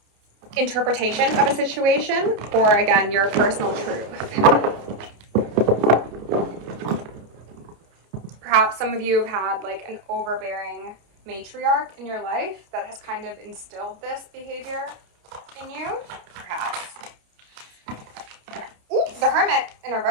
interpretation of a situation, or again, your personal truth. Perhaps some of you have had like an overbearing matriarch in your life that has kind of instilled this behavior in you. Perhaps. Ooh, the Hermit in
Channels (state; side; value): late; left; 30 ms